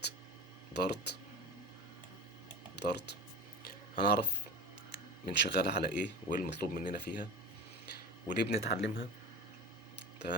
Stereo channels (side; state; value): both; normal; correlation 0.32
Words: دارت. دارت هنعرف من شغالة على ايه وايه المطلوب مننا فيها وليه بنتعلمها.